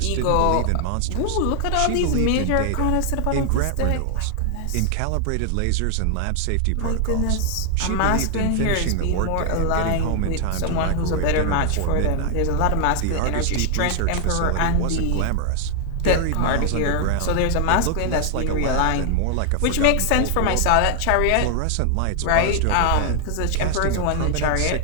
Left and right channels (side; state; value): both; different; correlation 0.00